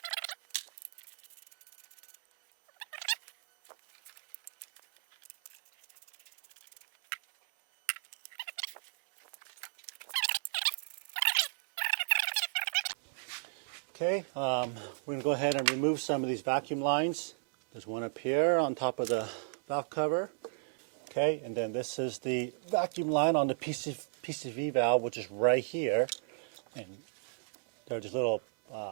Okay, we're going to go ahead and remove some of these vacuum lines. There's one up here on top of the valve cover. Okay, and then this is the vacuum line on the PCV valve, which is right here. And there are just little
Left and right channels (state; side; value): silent; left; 55 dB below the other